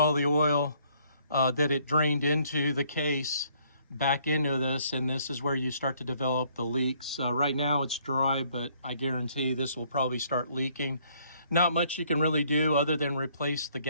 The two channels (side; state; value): both; inverted; correlation -0.64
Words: the oil that it drained into the case back into this, and this is where you start to develop the leaks. Right now it's dry, but I guarantee this will probably start leaking. Not much you can really do other than replace the